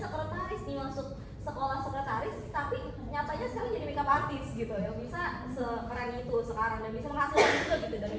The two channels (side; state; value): both; identical; correlation 1.00